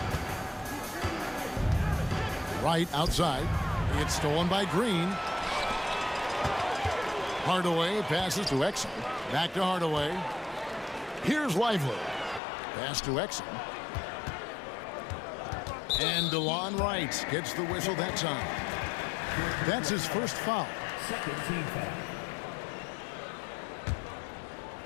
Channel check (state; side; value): drops out; right; at 12.4 s